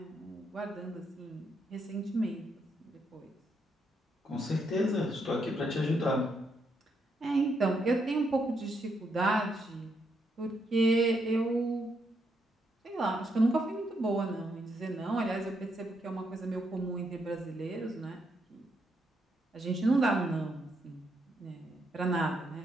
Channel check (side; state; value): both; normal; correlation 0.78